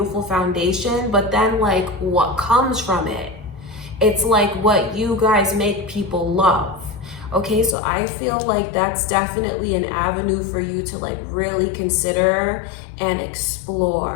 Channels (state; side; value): drops out; right; at 7.8 s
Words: foundation, but then like what comes from it, it's like what you guys make people love. Okay, so I feel like that's definitely an avenue for you to like really consider and